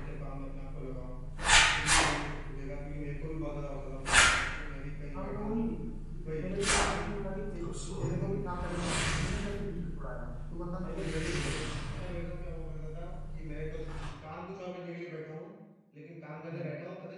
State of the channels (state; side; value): identical; both; correlation 1.00